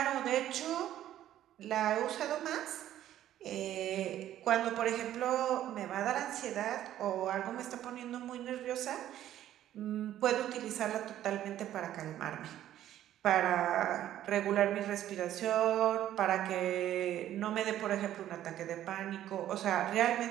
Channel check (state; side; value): quieter; left; 12.2 dB